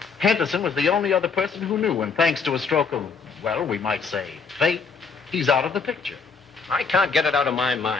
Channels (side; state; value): right; quieter; 5.2 dB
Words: Henderson was the only other person who knew, and thanks to a stroke of, well, we might say, fate, he's out of the picture. I can't get it out of my